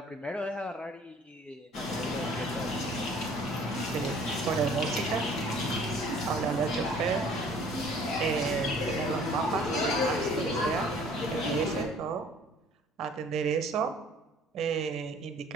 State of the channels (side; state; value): both; normal; correlation 0.53